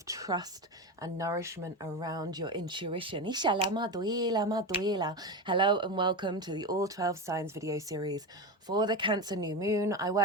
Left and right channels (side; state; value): both; normal; correlation 0.19